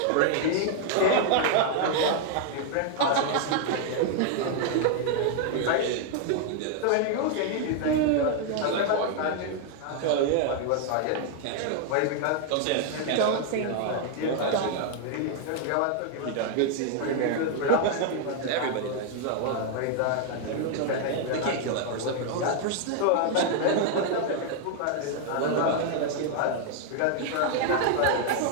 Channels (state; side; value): different; both; correlation 0.00